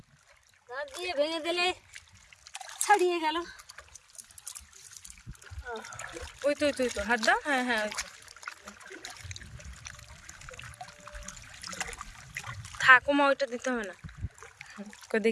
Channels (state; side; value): identical; both; correlation 1.00